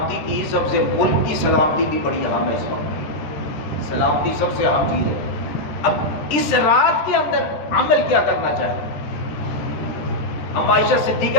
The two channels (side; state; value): right; late; 13 ms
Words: کی سب سے، ملک کی سلامتی بھی بڑی اہم ہے. اس وقت سلامتی سب سے اہم چیز ہے. اب اس رات کے اندر عمل کیا کرنا چاہیے؟ ہم عائشہ